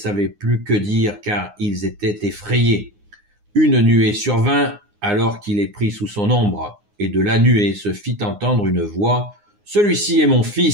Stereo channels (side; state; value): left; late; 9.7 ms